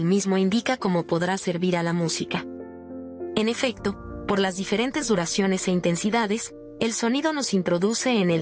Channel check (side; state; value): both; identical; correlation 1.00